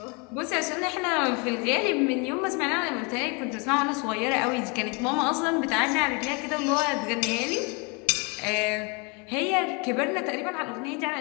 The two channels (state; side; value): quieter; right; 31.5 dB